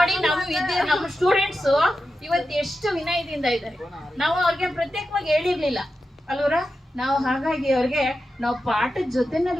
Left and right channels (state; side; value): normal; both; correlation 0.91